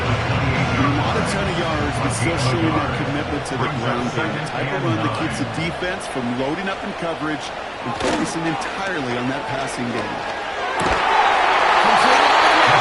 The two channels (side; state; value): both; identical; correlation 1.00